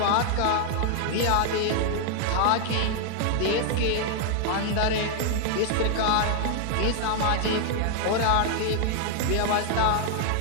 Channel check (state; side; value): different; both; correlation 0.00